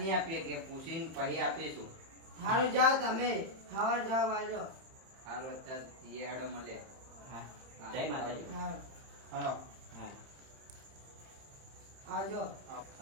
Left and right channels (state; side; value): late; left; 31 ms